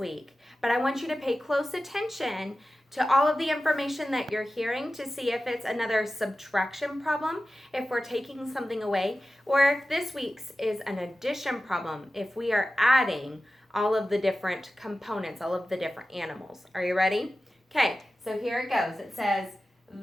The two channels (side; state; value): both; normal; correlation 0.94